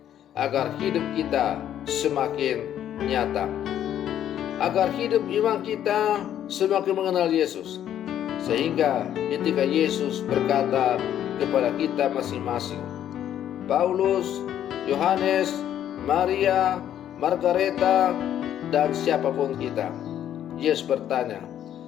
agar hidup kita semakin nyata, agar hidup iman kita semakin mengenal Yesus, sehingga ketika Yesus berkata kepada kita masing-masing, Paulus, Yohanes, Maria, Margareta, dan siapapun kita, Yesus bertanya,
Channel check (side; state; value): right; quieter; 10.7 dB